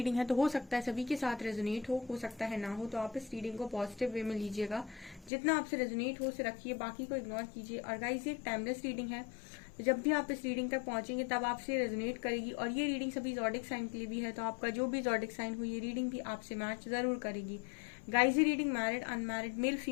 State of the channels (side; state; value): right; drops out; at 5.3 s